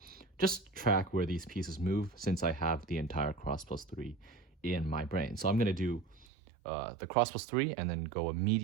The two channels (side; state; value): left; drops out; at 6.2 s